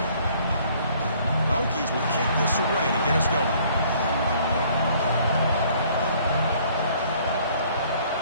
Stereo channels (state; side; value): inverted; both; correlation -0.59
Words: The Hokies will kick this away to get us going.